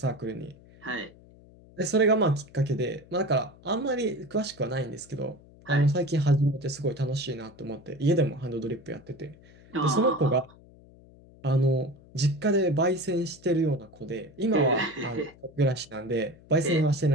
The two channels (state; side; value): noise; left; hum, 24 dB below the sound